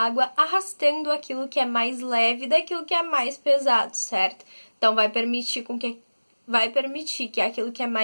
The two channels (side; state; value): both; inverted; correlation -1.00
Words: arrastando aquilo que é mais leve daquilo que é mais pesado, certo? Então, vai permitir que aquilo que é